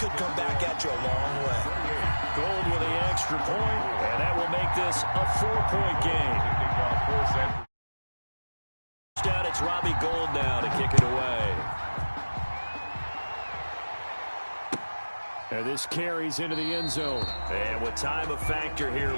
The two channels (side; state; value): both; inverted; correlation -1.00